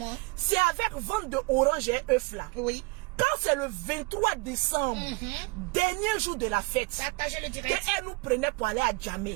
C'est avec vente de orange et œuf là. Oui. Quand c'est le 23 décembre, dernier jour de la fête, partagez le direct. qu'elle nous prenait pour aller à Djamé.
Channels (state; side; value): quieter; left; 25.9 dB